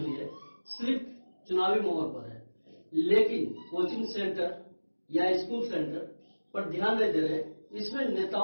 है सिर्फ चुनावी मोहर पर है, लेकिन कोचिंग सेंटर या स्कूल सेंटर पर ध्यान नहीं दे रहे। इसमें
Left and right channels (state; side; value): inverted; both; correlation -1.00